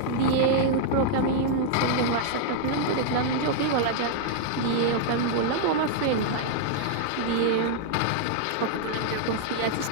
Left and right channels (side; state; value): both; different; correlation -0.01